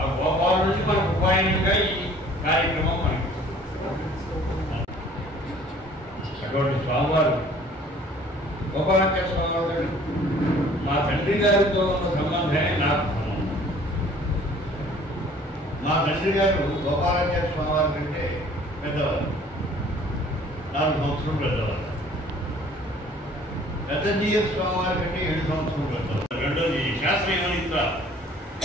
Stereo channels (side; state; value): both; normal; correlation 0.53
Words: గోపాల నుంచి మనకు ఉపాయనంగా ఈ కార్యక్రమం మనకి అటువంటి స్వామివారు గోపాలాచార్య స్వామివారు మా తండ్రి గారితో ఉన్న సంబంధమే నాకు సంబంధం. మా తండ్రి గారు గోపాలాచార్య స్వామివారి కంటే పెద్దవారు, 4 సంవత్సరాలు పెద్దవారు. పెద్దజీయ స్వామివారి కంటే 7 సంవత్సరాలు పెద్దవారు. రెండోది శాస్త్రీయ